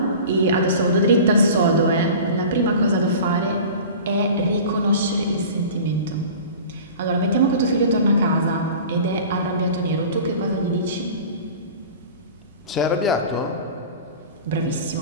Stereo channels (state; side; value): inverted; both; correlation -0.38